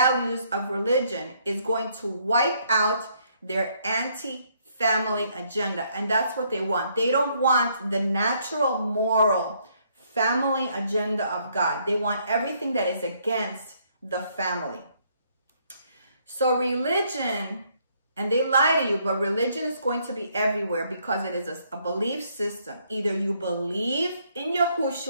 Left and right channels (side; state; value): both; inverted; correlation -0.69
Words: of religion is going to wipe out their anti-family agenda. And that's what they want. They don't want the natural, moral family agenda of God. They want everything that is against the family. So religion, and they lie to you, but religion is going to be everywhere because it is a belief system. Either you believe in